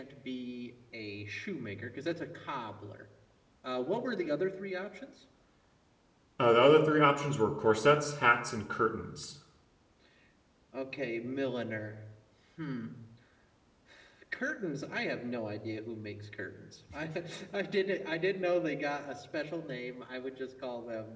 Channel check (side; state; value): both; identical; correlation 1.00